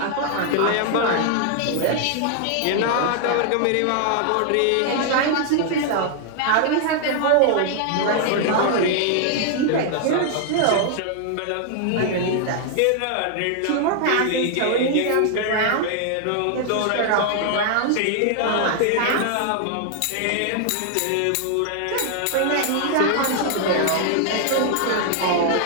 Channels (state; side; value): different; both; correlation 0.00